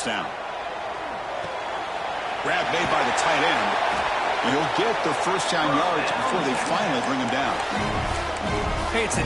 down. Grab made by the tight end. And he'll get the first down yards before they finally bring him down. Hey, it's a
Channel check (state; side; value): identical; both; correlation 1.00